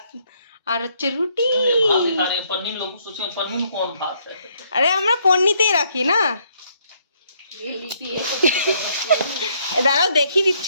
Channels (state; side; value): inverted; both; correlation -0.69